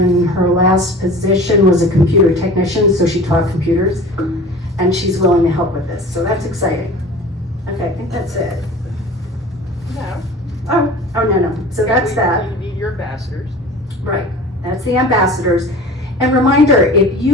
her last position was a computer technician, so she taught computers, and she's willing to help with this, so that's exciting. Okay, I think that's it. No. Oh, no, so that's that. You need your ambassadors. Right, that's the ambassadors. And reminder, if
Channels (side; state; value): both; normal; correlation 0.40